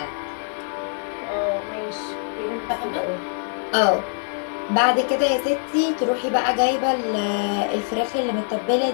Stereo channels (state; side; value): silent; right; digital silence